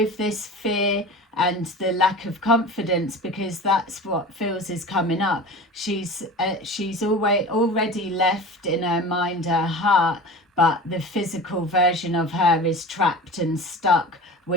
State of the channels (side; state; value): both; normal; correlation 0.35